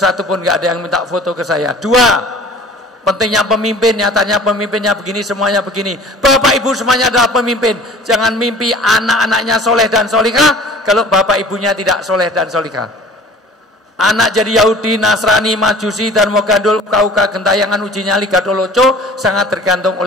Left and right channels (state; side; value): normal; both; correlation 0.46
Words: pun nggak ada yang minta foto ke saya. 2, pentingnya pemimpin, nyatanya pemimpinnya begini, semuanya begini. Bapak Ibu semuanya adalah pemimpin. Jangan mimpi anak-anaknya soleh dan solihah kalau bapak ibunya tidak soleh dan solihah. Anak jadi Yahudi, Nasrani, Majusi, dan Mogandul, Kauka, Gentayangan, Uji Nyali, Gadoloco sangat tergantung